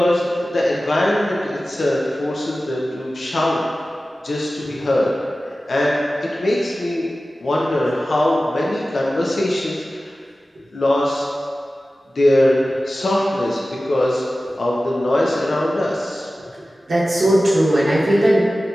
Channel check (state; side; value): normal; both; correlation 0.95